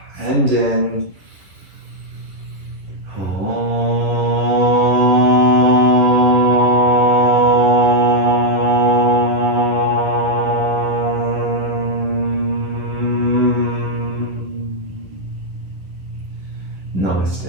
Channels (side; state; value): left; late; 10 ms